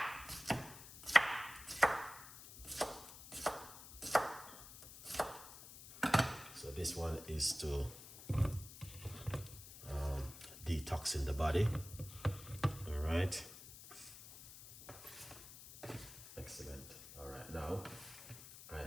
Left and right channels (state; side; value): noise; left; hiss, 15 dB below the sound